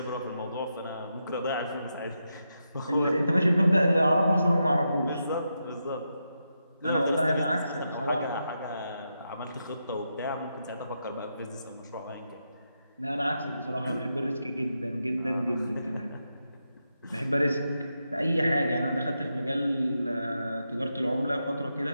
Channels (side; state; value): both; inverted; correlation -0.85